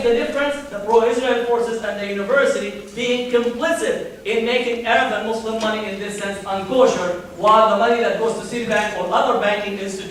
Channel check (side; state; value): both; identical; correlation 1.00